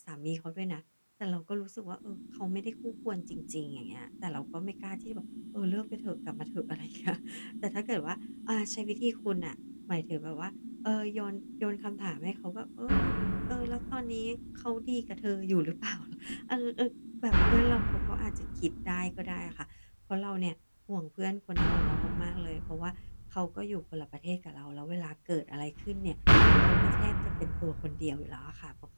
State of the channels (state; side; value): inverted; both; correlation -1.00